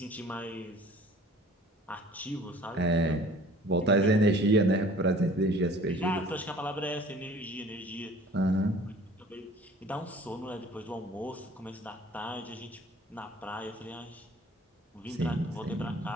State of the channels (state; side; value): normal; both; correlation 0.49